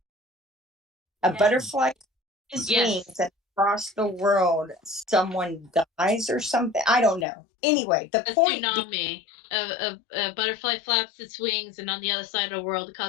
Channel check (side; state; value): right; drops out; at 7.2 s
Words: A butterfly beats its wings and across the world someone dies or something. I don't know. Anyway, the point tsunami. A butterfly flaps its wings, and on the other side of the world, it